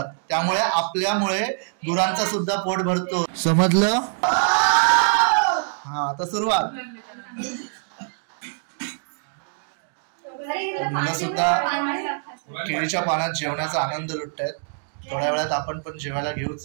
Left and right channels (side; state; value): left; silent; digital silence